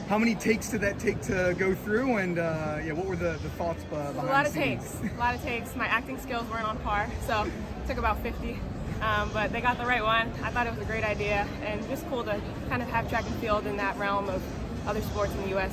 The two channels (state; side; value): identical; both; correlation 1.00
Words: How many takes did that take to go through, and what were the thoughts behind A lot the of scenes? takes, a lot of takes. My acting skills weren't on par, so it took about 50. But they got the right one. I thought it was a great idea, and just cool to kind of have track and field in that realm of other sports in the U.S.,